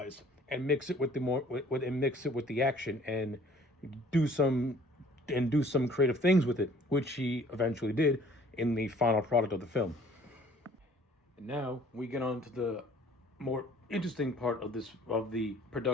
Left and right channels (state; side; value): normal; both; correlation 0.54